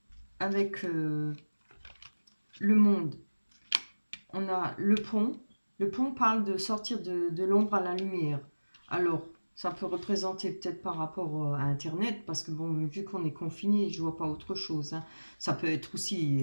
avec le monde, on a le pont. Le pont parle de sortir de l'ombre à la lumière. Alors, ça peut représenter peut-être par rapport à Internet, parce que bon, vu qu'on est confiné, je vois pas autre chose, hein. Ça peut être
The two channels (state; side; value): inverted; both; correlation -1.00